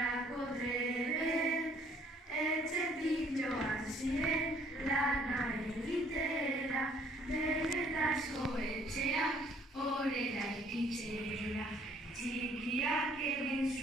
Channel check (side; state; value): both; normal; correlation 0.61